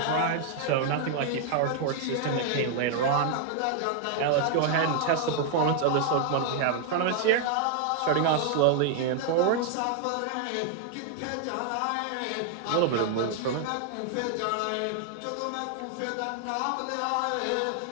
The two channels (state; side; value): different; both; correlation 0.00